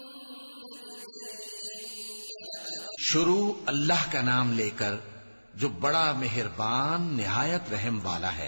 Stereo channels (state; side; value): inverted; both; correlation -1.00